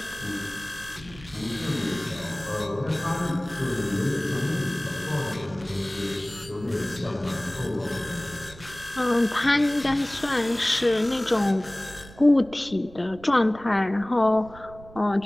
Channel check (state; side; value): noise; right; rumble, 19 dB below the sound